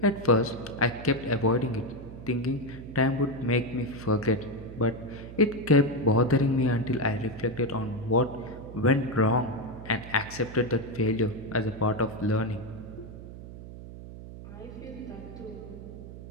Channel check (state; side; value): noise; right; hum, 13 dB below the sound